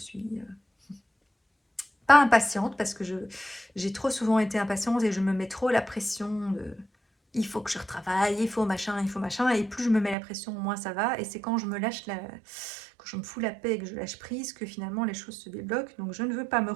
pas impatiente parce que j'ai trop souvent été impatiente et je me mets trop la pression de il faut que je retravaille, il faut machin, et plus je me mets la pression, moins ça va. Et c'est quand je me lâche quand je me fous la paix et que je lâche prise que finalement les choses se débloquent. Donc je ne veux pas me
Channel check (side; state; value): left; drops out; at 10.2 s